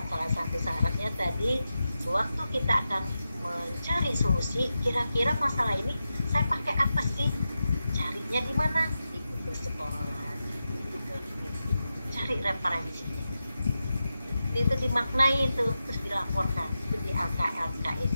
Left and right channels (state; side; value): inverted; both; correlation -0.91